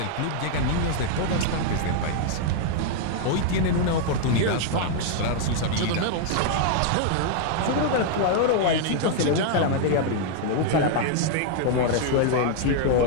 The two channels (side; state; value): both; different; correlation -0.01